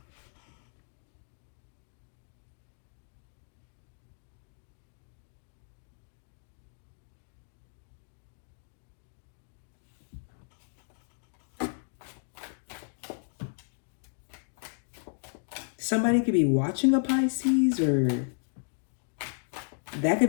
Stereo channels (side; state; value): right; silent; digital silence